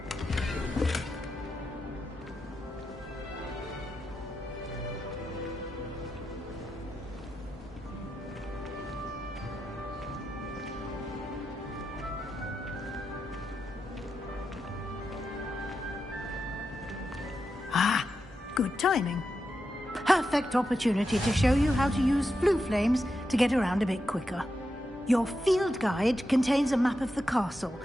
Good timing. Perfect opportunity to show you how to use flue flames to get around a bit quicker. Your field guide contains a map of the castle.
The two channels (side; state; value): both; normal; correlation 0.87